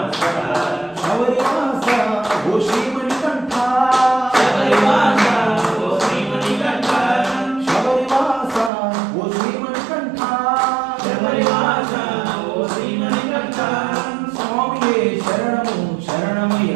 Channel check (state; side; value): drops out; left; at 8.7 s